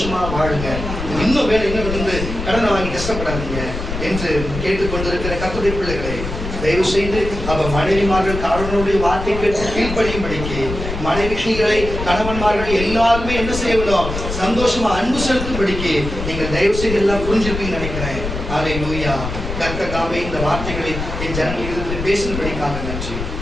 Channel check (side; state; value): left; noise; rumble, 6 dB below the sound